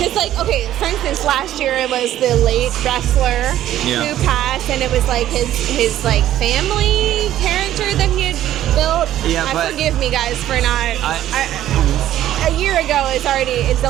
like, okay, for instance, last year it was the late wrestler who passed, and it was like his like family character that he had built. Yeah, but forgive me, guys, for not. A year ago is it's a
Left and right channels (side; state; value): left; quieter; 12.6 dB